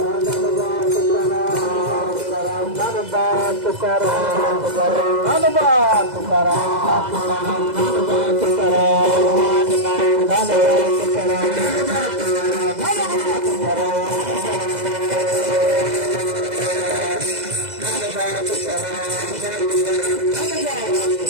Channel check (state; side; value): late; left; 2.0 ms